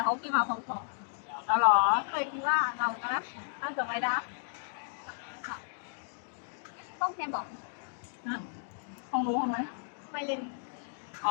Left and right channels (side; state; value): right; silent; digital silence